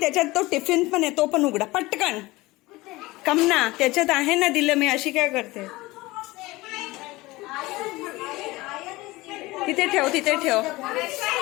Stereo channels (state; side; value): quieter; right; 20.5 dB